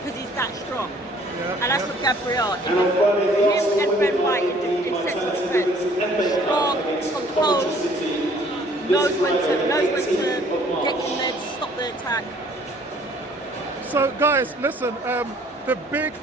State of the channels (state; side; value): normal; both; correlation 0.57